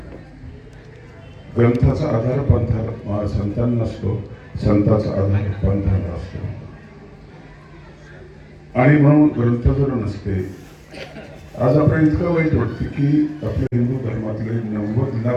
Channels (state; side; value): identical; both; correlation 1.00